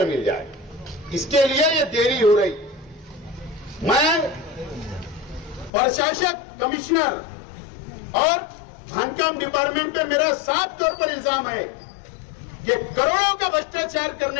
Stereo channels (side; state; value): right; drops out; at 5.7 s